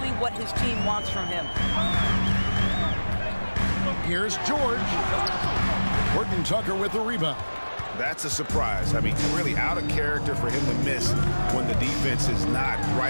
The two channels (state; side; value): inverted; both; correlation -1.00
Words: what his team wants from him. Here's George. Horton Tucker with the rebound. That's a surprise. I mean, really out of character for him to miss when the defense is not